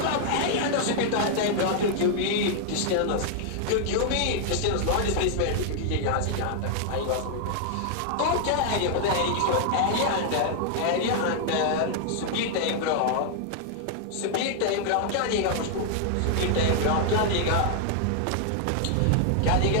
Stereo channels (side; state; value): both; different; correlation 0.00